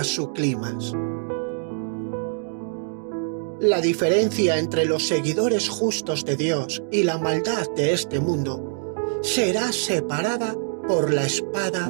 su clímax. La diferencia entre los seguidores justos de Dios y la maldad de este mundo será separada por la espada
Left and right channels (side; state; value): left; silent; digital silence